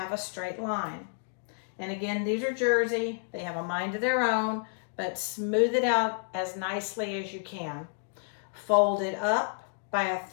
a straight line. And again, these are jersey. They have a mind of their own, but smooth it out as nicely as you can. Fold it up by a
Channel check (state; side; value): silent; right; digital silence